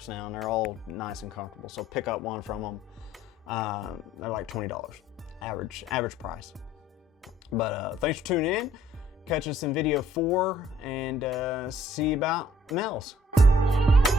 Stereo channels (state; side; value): normal; both; correlation 0.61